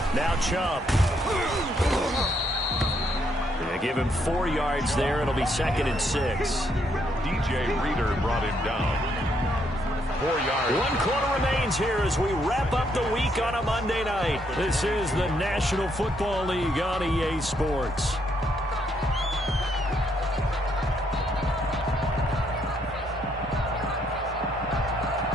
Now Chubb. They give him 4 yards there. It'll be 2nd and 6. DJ Reader brought him down. 4 yards. 1 quarter remains here as we wrap up the week on a Monday night. This is the National Football League on EA Sports.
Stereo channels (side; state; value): both; normal; correlation 0.73